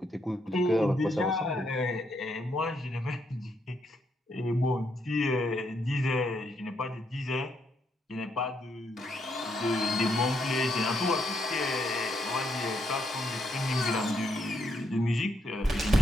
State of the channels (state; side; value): normal; both; correlation 0.76